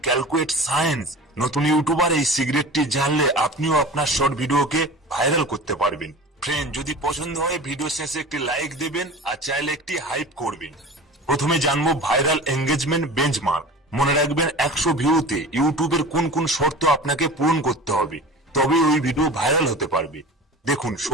ক্যালকুলেট সায়েন্স। নতুন ইউটিউবার এই সিক্রেটটি জানলে আপনিও আপনার শর্ট ভিডিওকে ভাইরাল করতে পারবেন। ফ্রেন্ড, যদি পছন্দ হয় ভিডিও শেষে একটি লাইক দেবেন আর চাইলে একটি হাইপ করবেন। প্রথমে জানবো ভাইরাল এঙ্গেজমেন্ট বেঞ্চমার্ক। মনে রাখবেন 100 ভিউতে ইউটিউবের কোন কোন শর্ত আপনাকে পূরণ করতে হবে, তবে ওই ভিডিও ভাইরাল হতে পারবে। দেখুন,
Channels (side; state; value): both; normal; correlation 0.36